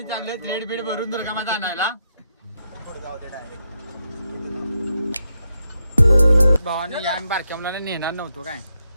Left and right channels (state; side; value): inverted; both; correlation -0.82